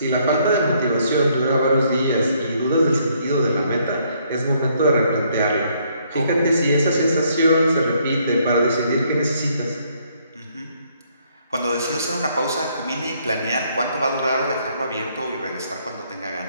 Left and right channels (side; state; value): both; inverted; correlation -0.68